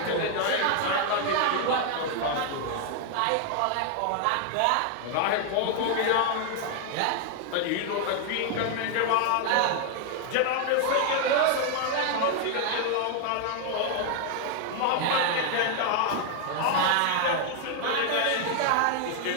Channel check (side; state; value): both; different; correlation 0.00